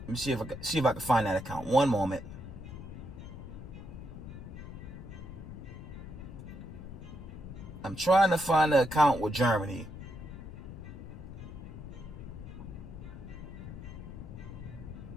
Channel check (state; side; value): noise; left; rumble, 11 dB below the sound